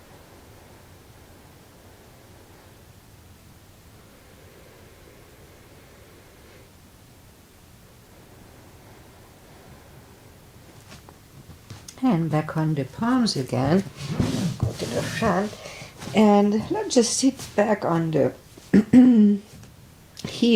And back on the palms again. Go to the front. And let's just sit back on the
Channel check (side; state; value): both; identical; correlation 1.00